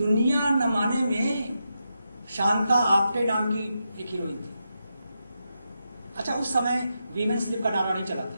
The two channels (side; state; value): both; inverted; correlation -0.86